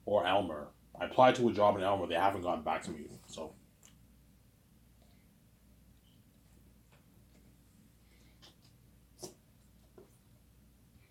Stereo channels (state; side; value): identical; both; correlation 1.00